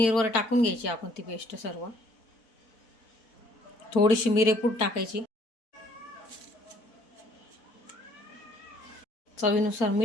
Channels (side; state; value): right; late; 4.5 ms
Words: टाकून घ्यायची आपण ती पेस्ट सर्व। थोडीशी मिरेपूड टाकायची, चवीनुसार